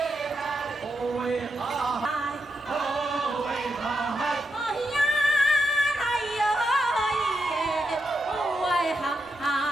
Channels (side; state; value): both; normal; correlation 0.85